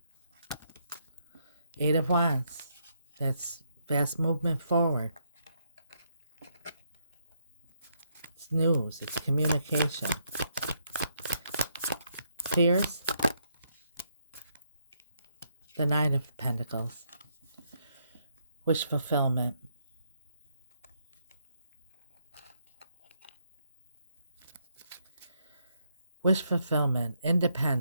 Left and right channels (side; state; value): both; inverted; correlation -0.75